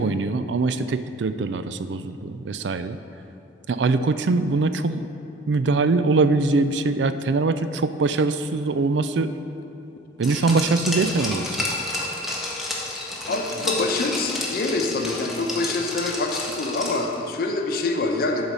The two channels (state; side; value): normal; both; correlation 0.41